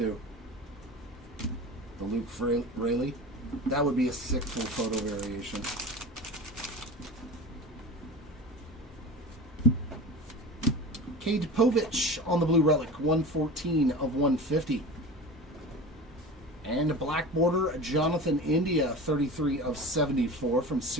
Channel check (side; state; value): both; normal; correlation 0.32